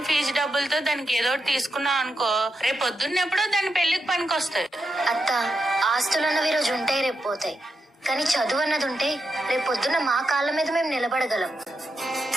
ఫీజు డబ్బులతో దానికి ఏదో ఒకటి తీసుకున్నావు అనుకో, రేపు పొద్దున్నెప్పుడో దాని పెళ్లికి పనికొస్తాయి. అత్త, ఆస్తులు అన్నవి రోజు ఉంటాయి, రేపు పోతాయి. కానీ చదువు అన్నది ఉంటే రేపు పొద్దున్న మా కాళ్ళ మీద మేము నిలబడగలం.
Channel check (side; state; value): both; normal; correlation 0.86